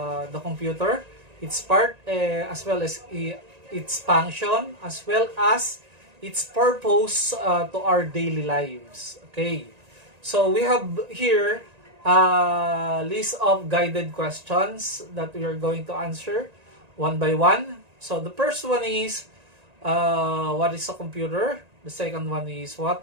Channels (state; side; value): late; left; 1.9 ms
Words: computer, its part, as well as its function, as well as its purpose to our daily lives. Okay, so we have here a list of guided questions that we are going to answer one by one. So the first one is, what is a computer? The second one is,